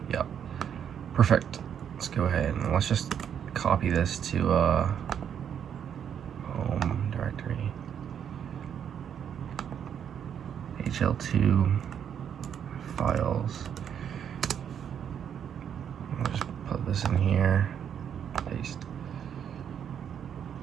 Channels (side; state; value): left; quieter; 8.5 dB